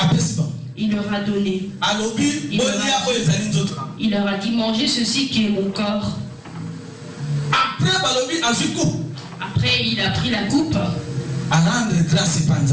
Il leur a donné. Il leur a dit, mangez ceci qui est mon corps. Après, il a pris la coupe.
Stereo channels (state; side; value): identical; both; correlation 1.00